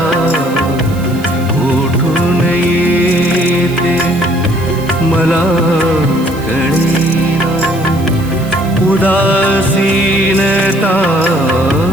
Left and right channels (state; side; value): noise; right; hiss, 20 dB below the sound